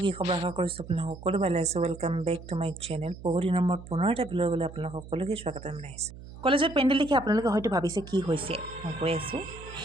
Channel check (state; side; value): noise; right; hum, 15 dB below the sound